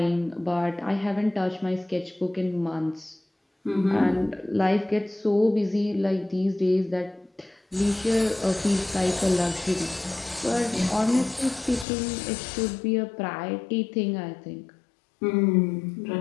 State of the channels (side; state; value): right; drops out; at 11.9 s